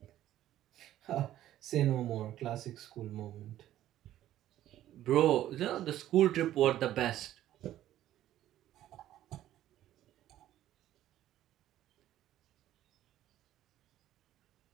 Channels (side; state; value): left; quieter; 13.0 dB